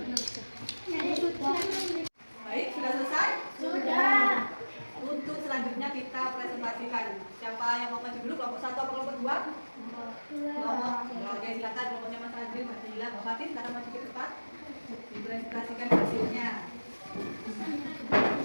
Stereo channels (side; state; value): both; inverted; correlation -1.00